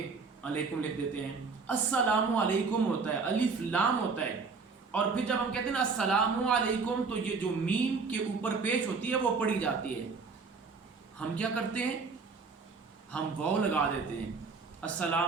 अलैकुम लिख देते हैं। अस्सलामु अलैकुम होता है, अलिफ लाम होता है, और फिर जब हम कहते हैं ना अस्सलामु अलैकुम तो ये जो मीम के ऊपर पेश होती है वो पढ़ी जाती है। हम क्या करते हैं, हम वाव लगा देते हैं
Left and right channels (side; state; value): left; quieter; 4.7 dB